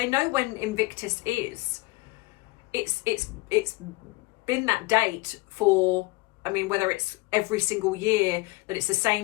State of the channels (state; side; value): quieter; right; 22.5 dB